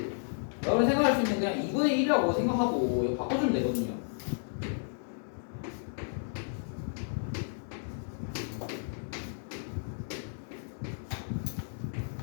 여러분 생각할 수 있는 그냥 2분의 1이라고 생각하고 이거 바꿔주면 되거든요.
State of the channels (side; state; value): right; silent; digital silence